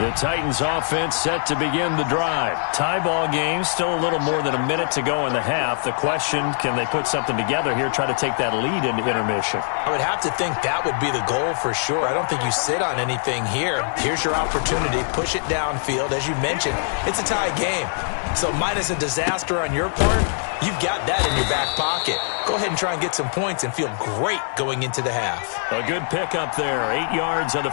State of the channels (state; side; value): silent; right; digital silence